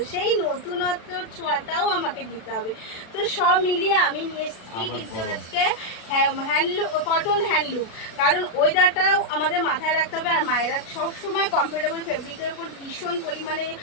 সেই নতুনত্বর ছোঁয়াটাও আমাকে দিতে হবে। তো সব মিলিয়ে আমি নিয়ে এসেছি কিন্তু আজকে হ্যান্ডলুম, কটন হ্যান্ডলুম, কারণ ওয়েদারটাও আমাদের মাথায় রাখতে হবে। আর মায়েরা সবসময় কমফোর্টেবল ফেব্রিকের উপর ভীষণ পরিমাণে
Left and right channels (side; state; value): right; late; 36 ms